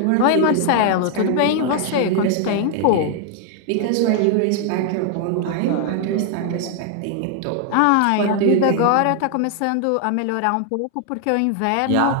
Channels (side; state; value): both; different; correlation 0.00